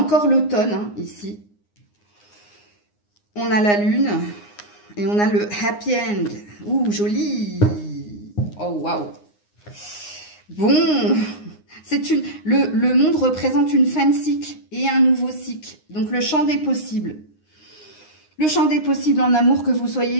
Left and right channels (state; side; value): late; right; 9.7 ms